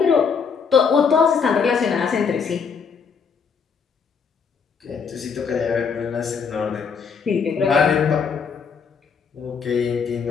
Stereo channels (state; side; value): quieter; right; 6.0 dB